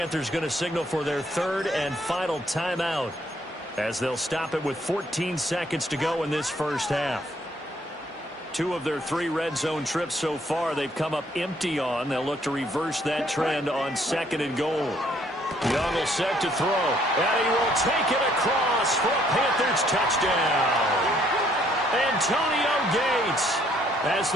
going to signal for their 3rd and final timeout as they'll stop it with 14 seconds to go in this first half. 2 of their 3 red zone trips so far they've come up empty on. They'll look to reverse that trend on 2nd and goal. Young will set to throw, and he will take it across for a Panthers touchdown. Antonio Gates, as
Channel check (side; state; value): both; normal; correlation 0.66